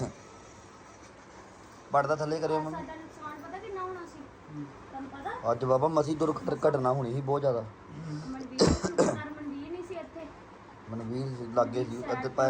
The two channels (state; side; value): identical; both; correlation 1.00